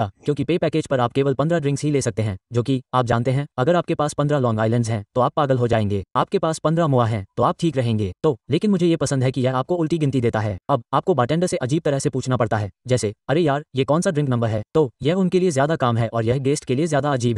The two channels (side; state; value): both; identical; correlation 1.00